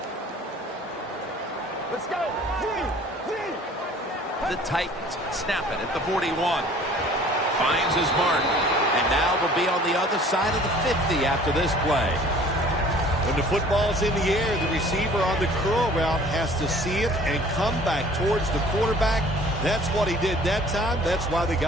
Let's go. The Titans snap it at the 41. Finds his mark. And now will be on the other side of the 50 after this play. When the football's in the air, the receiver on the curl route has to see it and come back towards the quarterback. That's what he did that time. That's why they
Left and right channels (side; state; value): both; normal; correlation 0.51